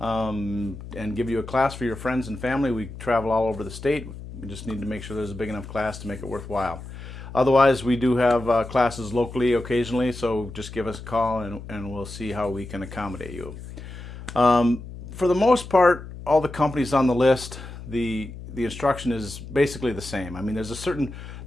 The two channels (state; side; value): noise; left; hum, 12 dB below the sound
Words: give you a class for your friends and family. We travel all over the state. We just need to make sure there's a big enough class to make it worthwhile. Otherwise, we do have classes locally occasionally, so just give us a call and we'll see how we can accommodate you. For the most part, all the companies on the list, the instruction is basically the same. I mean, there's